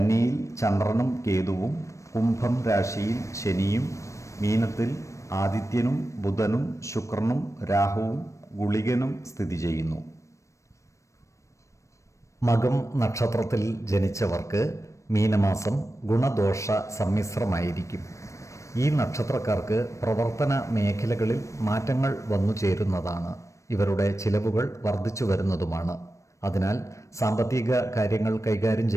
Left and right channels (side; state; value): right; late; 0.15 ms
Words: ചന്ദ്രനും കേതുവും, കുംഭം രാശിയിൽ ശനിയും, മീനത്തിൽ ആദിത്യനും ബുധനും ശുക്രനും രാഹുവും ഗുളികനും സ്ഥിതി ചെയ്യുന്നു. മകം നക്ഷത്രത്തിൽ ജനിച്ചവർക്ക് മീനമാസം ഗുണദോഷ സമ്മിശ്രമായിരിക്കും. ഈ നക്ഷത്രക്കാർക്ക് പ്രവർത്തന മേഖലകളിൽ മാറ്റങ്ങൾ വന്നു ചേരുന്നതാണ്. ഇവരുടെ ചിലവുകൾ വർദ്ധിച്ചു വരുന്നതുമാണ്. അതിനാൽ സാമ്പത്തിക കാര്യങ്ങൾ കൈകാര്യം